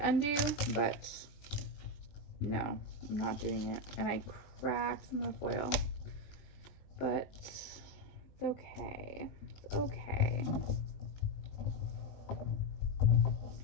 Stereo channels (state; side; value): late; right; 20 ms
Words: but no, I'm not doing it. And I cracked some of the foil, but it's okay. It's okay.